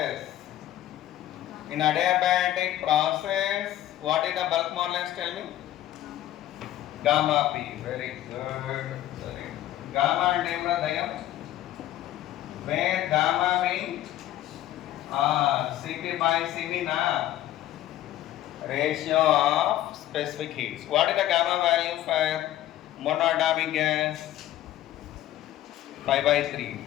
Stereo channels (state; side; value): quieter; right; 13.4 dB